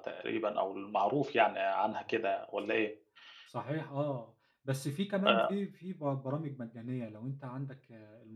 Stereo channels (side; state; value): both; identical; correlation 1.00